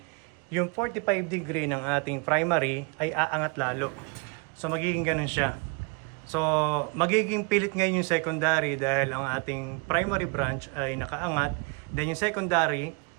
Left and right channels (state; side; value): quieter; left; 31.2 dB